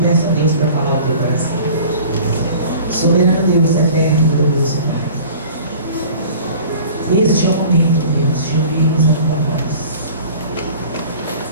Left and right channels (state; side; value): inverted; both; correlation -0.44